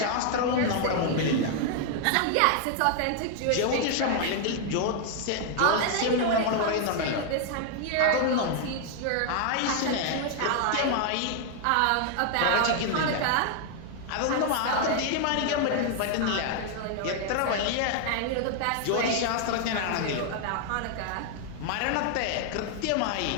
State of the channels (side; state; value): both; different; correlation 0.00